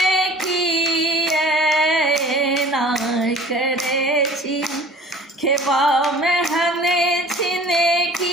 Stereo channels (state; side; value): normal; both; correlation 0.47